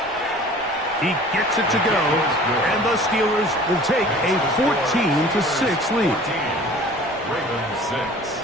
He gets it to go, and the Steelers will take a 14-6 lead. Ravens 6.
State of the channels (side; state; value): left; noise; rumble, 25 dB below the sound